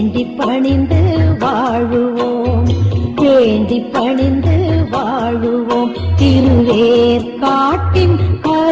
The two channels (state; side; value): identical; both; correlation 1.00